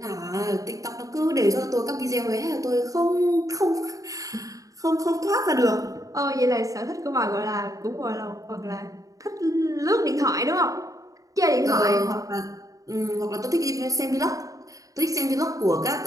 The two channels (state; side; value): late; left; 0.17 ms